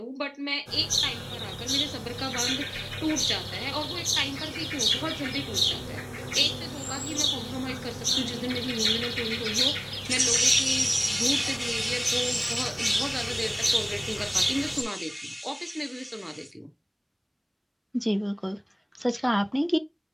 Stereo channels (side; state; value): both; identical; correlation 1.00